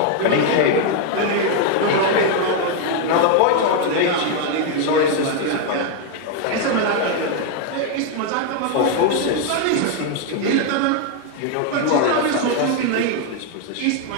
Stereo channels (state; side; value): different; both; correlation 0.01